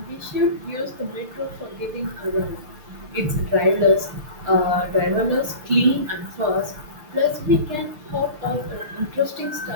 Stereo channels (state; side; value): late; left; 6.6 ms